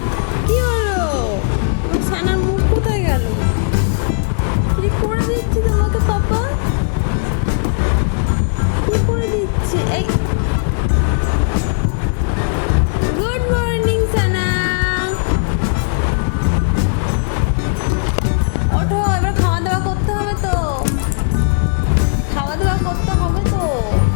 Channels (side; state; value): right; silent; 68 dB below the other